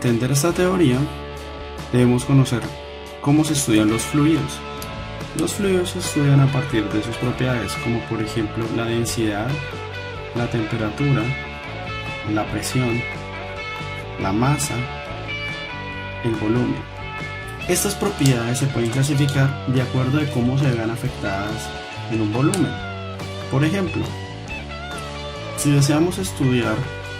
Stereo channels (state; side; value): identical; both; correlation 1.00